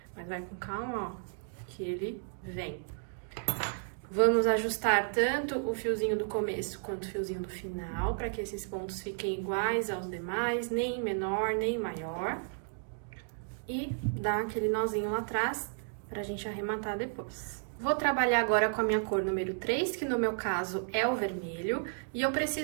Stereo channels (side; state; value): left; silent; digital silence